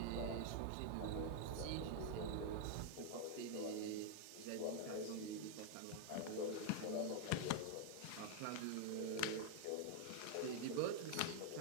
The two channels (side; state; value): both; different; correlation 0.00